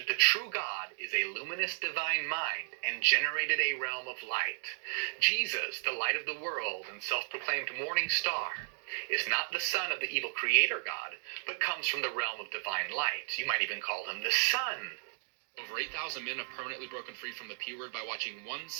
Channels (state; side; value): silent; left; digital silence